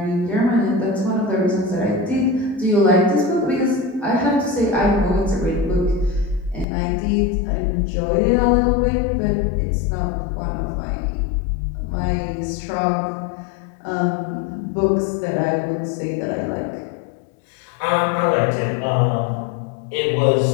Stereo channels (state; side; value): drops out; right; at 6.7 s